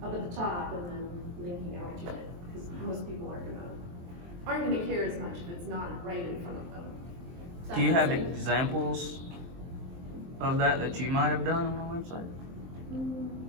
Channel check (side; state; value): left; late; 23 ms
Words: up at the top, and then linking out to it, because most people aren't gonna care as much if it's not right in front of them. Does that Do you make have sense? examples of that you might have done on a website? Mm,